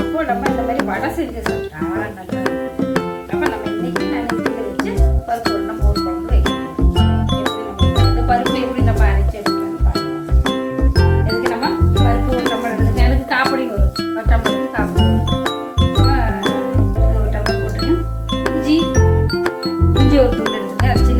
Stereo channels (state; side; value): identical; both; correlation 1.00